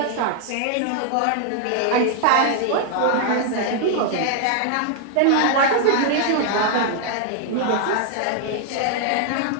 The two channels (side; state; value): both; different; correlation 0.00